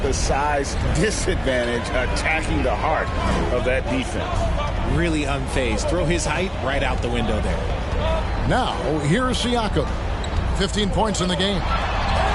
the size disadvantage, attacking the heart of that defense. Really unfazed. Throw his height right out the window there. Now, here's Siakam. 15 points in the game.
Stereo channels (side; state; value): both; identical; correlation 1.00